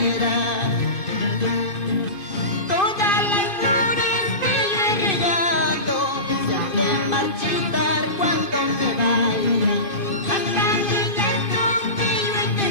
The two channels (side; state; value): right; late; 2.5 ms